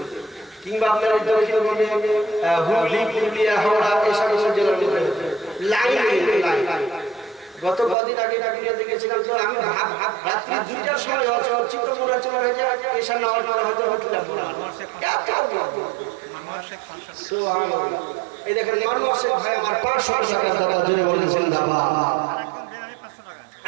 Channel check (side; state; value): left; drops out; at 8.0 s